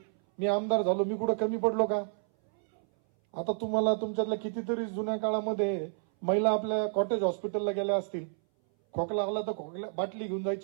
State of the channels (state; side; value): silent; left; 58 dB below the other